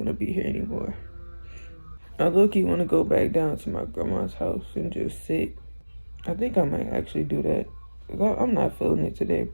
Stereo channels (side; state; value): both; inverted; correlation -1.00